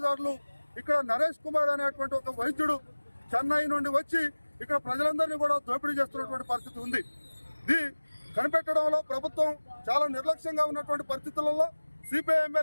ఇక్కడ నరేష్ కుమార్ అనేటువంటి ఒక వైద్యుడు చెన్నై నుండి వచ్చి ఇక్కడ ప్రజలందరినీ కూడా దోపిడీ చేస్తున్నటువంటి పరిస్థితి ఉంది. ఇది కనిపెట్టడంలో ప్రభుత్వం చాలా నిర్లక్ష్యంగా ఉన్నటువంటి పరిస్థితులలో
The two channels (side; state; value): both; inverted; correlation -1.00